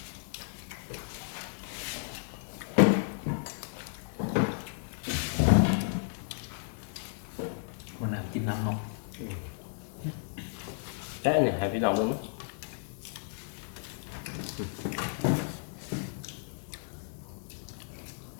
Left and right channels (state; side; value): silent; right; digital silence